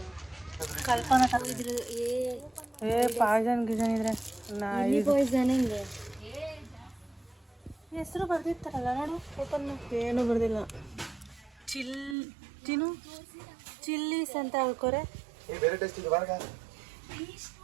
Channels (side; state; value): left; drops out; at 12.2 s